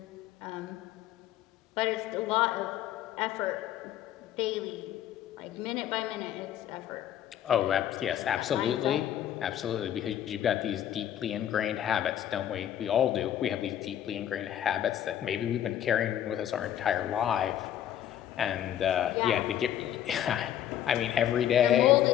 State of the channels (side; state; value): right; quieter; 10.9 dB